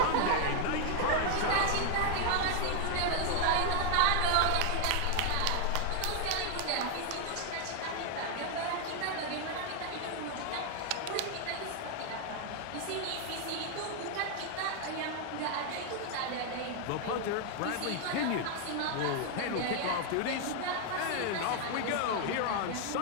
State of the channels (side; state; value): both; different; correlation 0.00